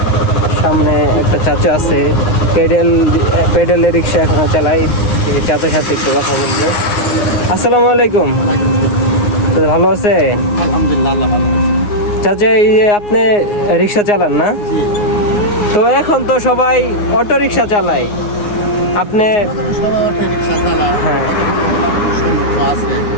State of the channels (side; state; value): right; late; 9.6 ms